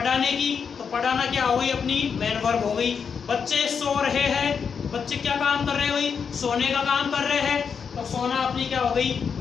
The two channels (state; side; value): quieter; right; 6.4 dB